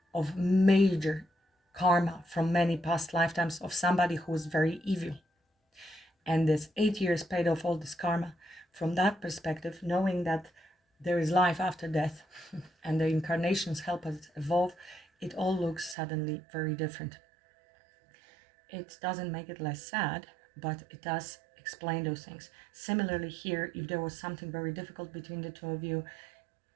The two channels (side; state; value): left; drops out; at 16.0 s